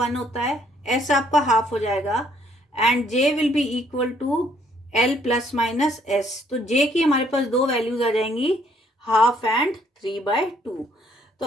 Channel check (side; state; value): both; normal; correlation 0.66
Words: होता है, S आपका हाफ हो जाएगा and J will be equal to L plus minus S. तो J की हमारे पास दो वैल्यूज आ जाएंगी, हाफ एंड 3/2. तो